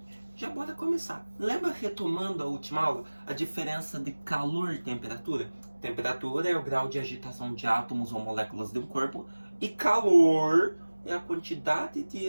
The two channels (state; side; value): inverted; both; correlation -1.00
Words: já bora começar. Lembra, retomando a última aula, a diferença de calor e temperatura? Temperatura é o grau de agitação de átomos ou moléculas de um corpo, e calor é a quantidade de